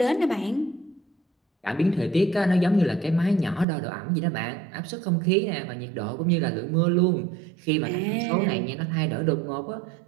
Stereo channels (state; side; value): drops out; left; at 3.7 s